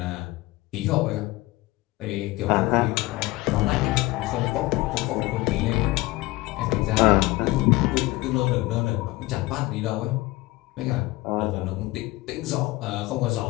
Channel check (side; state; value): right; quieter; 19.9 dB